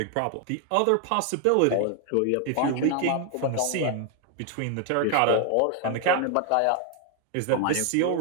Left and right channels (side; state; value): both; different; correlation 0.00